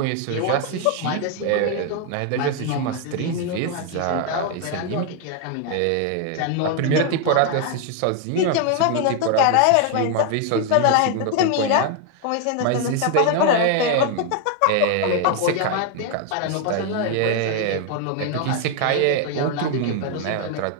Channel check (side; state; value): both; different; correlation 0.00